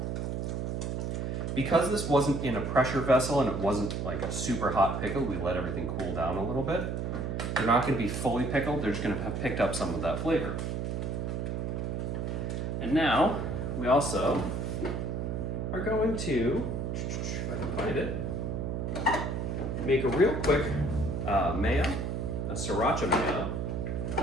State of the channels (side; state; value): right; noise; hum, 2 dB below the sound